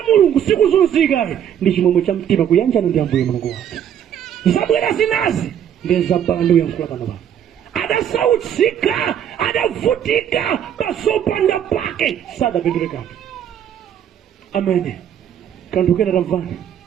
mulungu sikuzunzika ndi chimwemwe cha mtima kuyanjana ndi ambuye mulungu wake zabwera zinazi ndezabala ndiuyankhula pano pano adasautsika adavutika pasopanda pake sadapindulekani amene kanthu kena tamvana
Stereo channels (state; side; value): quieter; left; 9.5 dB